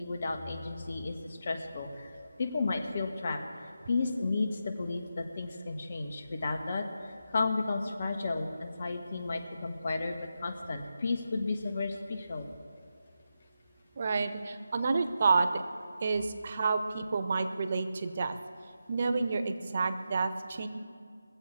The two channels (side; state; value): both; inverted; correlation -0.87